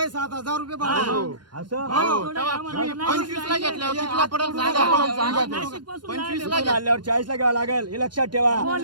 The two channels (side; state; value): left; late; 0.71 ms